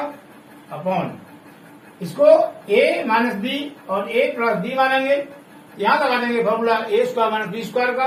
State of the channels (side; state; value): both; identical; correlation 1.00